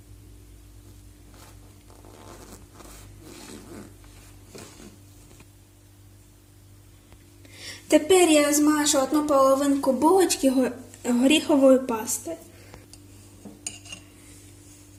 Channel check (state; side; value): identical; both; correlation 1.00